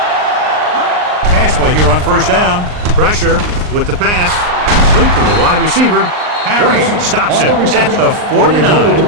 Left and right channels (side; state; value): left; late; 39 ms